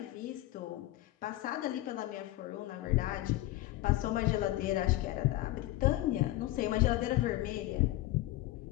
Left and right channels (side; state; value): right; quieter; 16.6 dB